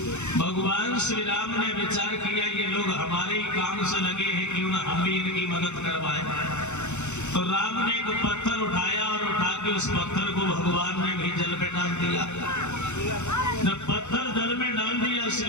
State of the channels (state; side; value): late; right; 0.83 ms